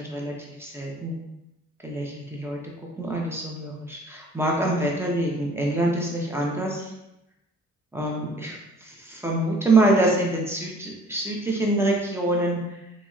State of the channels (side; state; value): both; normal; correlation 0.53